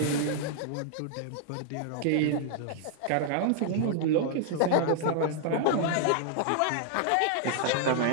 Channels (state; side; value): different; both; correlation -0.01